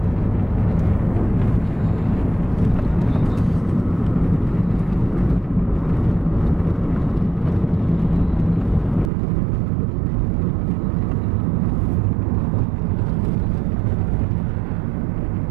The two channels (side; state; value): left; drops out; at 9.1 s